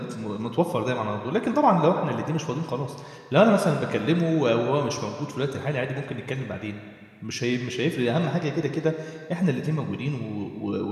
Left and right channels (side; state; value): both; identical; correlation 1.00